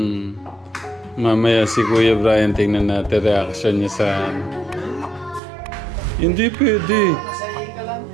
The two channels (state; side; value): drops out; left; at 5.4 s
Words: Mamaya si Kuya Brian, tingnan natin reaction niya sa... Hindi pwede. Masaya ka lang.